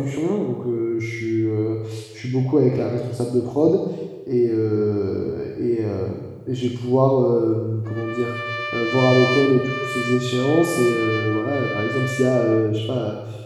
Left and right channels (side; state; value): both; identical; correlation 1.00